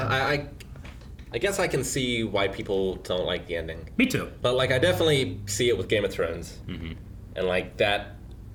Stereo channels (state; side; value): identical; both; correlation 1.00